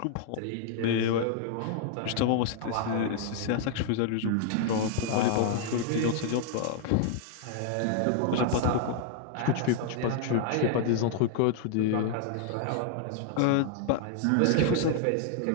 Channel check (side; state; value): both; different; correlation 0.00